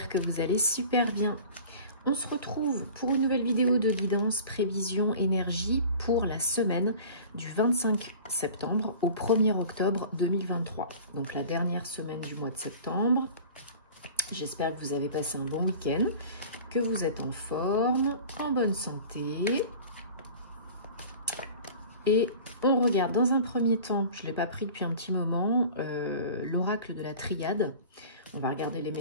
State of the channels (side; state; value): both; inverted; correlation -0.41